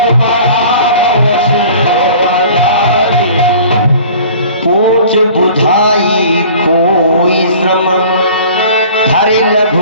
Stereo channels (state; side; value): inverted; both; correlation -0.46